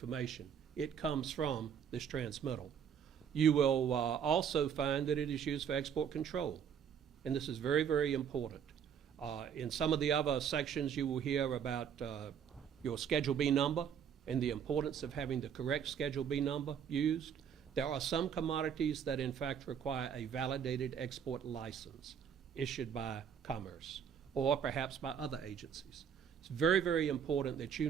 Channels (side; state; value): left; quieter; 7.9 dB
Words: It comes from this transmittal. You will also find that it is used for export control, and this is very, very important. In some of the other sections, you will hear about your Schedule B number and the importance of having the correct Schedule B number used. There are some commodities that in fact require a validated export license issued by Commerce or perhaps by other agencies. It's very, very important that you